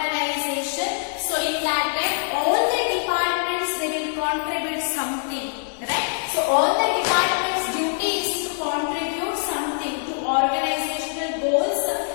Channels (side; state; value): right; silent; digital silence